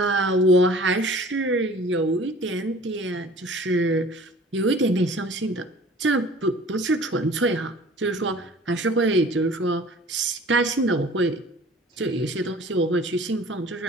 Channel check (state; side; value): normal; both; correlation 0.47